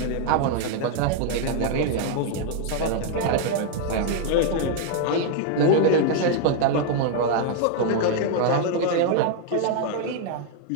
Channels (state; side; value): different; both; correlation 0.00